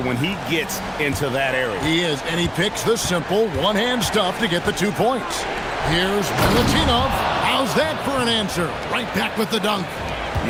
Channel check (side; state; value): both; identical; correlation 1.00